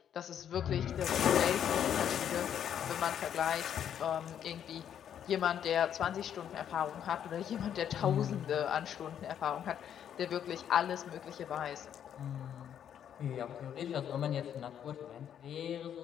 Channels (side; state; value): right; quieter; 9.3 dB